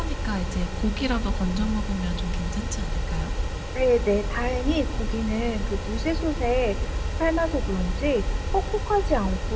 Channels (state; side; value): identical; both; correlation 1.00